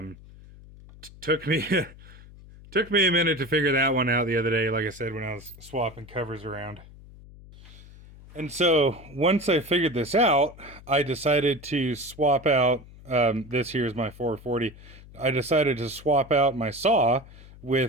Took me a minute to figure that one out the other day, like I said, when I was swapping covers around. And so once I figured this out, I decided to swap out, this here is my 440. I decided to swap out my saw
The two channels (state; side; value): noise; left; hum, 20 dB below the sound